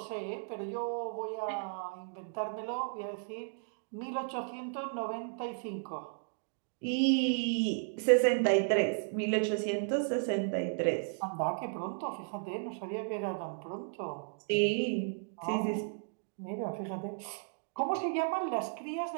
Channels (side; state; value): left; silent; digital silence